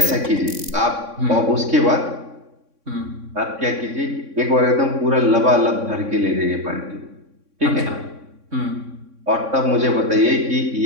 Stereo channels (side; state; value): left; late; 3.6 ms